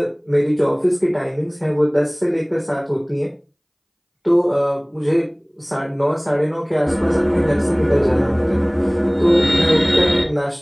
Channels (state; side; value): identical; both; correlation 1.00